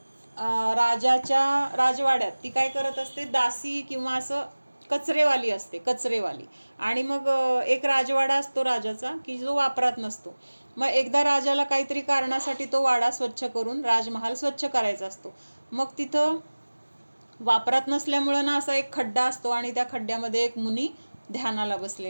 राजाच्या राजवाड्यात ती काय करत असते, दासी किंवा असं कचरेवाली असते, कचरेवाली. आणि मग एक राजवाडा असतो राजाचा की जो वापरात नसतो. मग एकदा राजाला काहीतरी कारणासाठी तो वाडा स्वच्छ करून राजमहाल स्वच्छ करायचा असतो. मग तिथं वापरात नसल्यामुळं ना असा एक खड्डा असतो आणि त्या खड्ड्यामध्ये एक मुनी ध्यानाला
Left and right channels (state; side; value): inverted; both; correlation -1.00